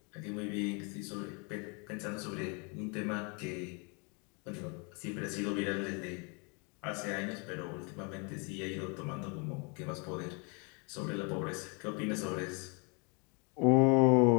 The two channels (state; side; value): quieter; right; 33.8 dB